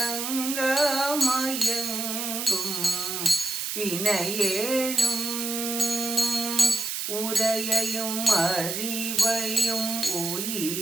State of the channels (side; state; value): right; noise; hiss, 3 dB below the sound